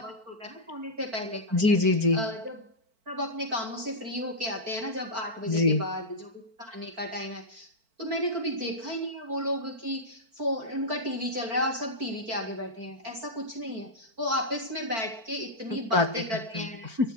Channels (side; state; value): left; late; 4.5 ms